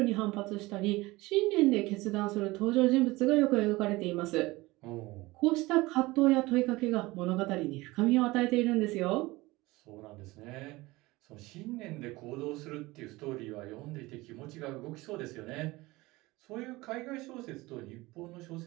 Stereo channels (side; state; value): left; quieter; 20.8 dB